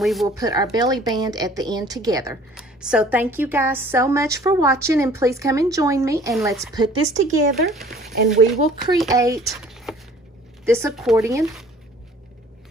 will put our belly band at the end together. So thank you guys so much for watching, and please come and join me, and let's put this together, and we will create this accordion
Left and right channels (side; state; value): both; normal; correlation 0.52